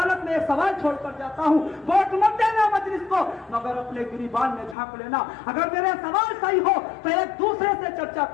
में एक सवाल छोड़कर जाता हूँ, वोट मत देना मजलिस को, मगर अपने गिरिबान में झांक लेना। अगर मेरे सवाल सही हो तो एक दूसरे से चर्चा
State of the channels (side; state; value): right; drops out; at 4.8 s